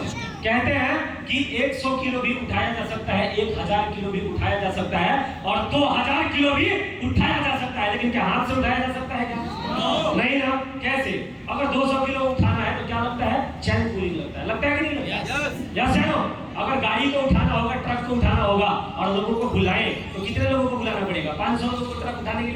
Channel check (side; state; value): both; identical; correlation 1.00